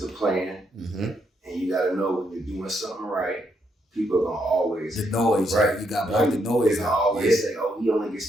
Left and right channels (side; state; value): both; normal; correlation 0.77